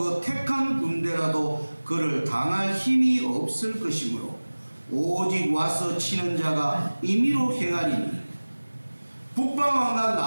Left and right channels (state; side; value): inverted; both; correlation -1.00